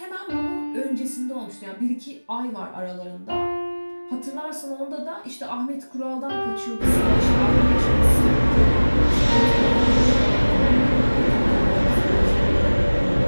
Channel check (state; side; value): inverted; both; correlation -1.00